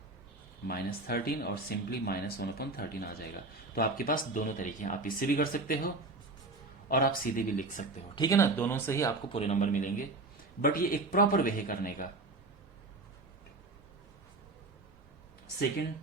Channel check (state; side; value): quieter; left; 3.2 dB